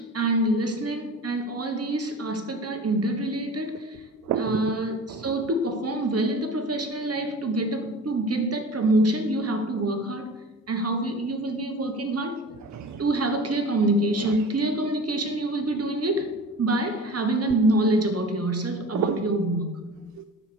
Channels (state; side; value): normal; both; correlation 0.38